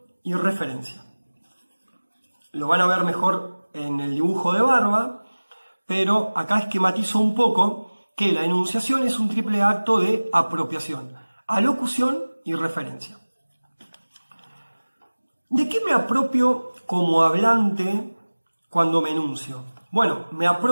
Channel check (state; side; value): inverted; both; correlation -1.00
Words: y referencia. Lo van a ver mejor en el dibujo de barba, pero acá esquematizo un poco que la enunciación es un triple acto de apropiación, alocución y referencia. ¿De qué me apropio como hablante cuando me enuncio? Bueno, me